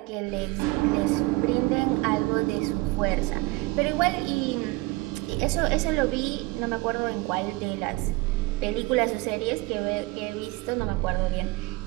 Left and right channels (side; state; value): left; quieter; 21.9 dB